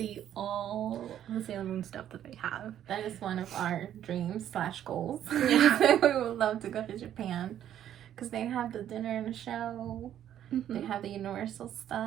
all the Sailor Moon stuff that they have. That is one of our dreams / goals. Yeah. We would love to go to Japan because they have the dinner and the show. They have the Universal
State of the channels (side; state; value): left; quieter; 10.8 dB